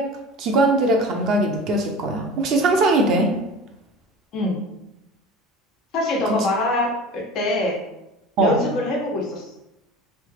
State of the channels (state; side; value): normal; both; correlation 0.37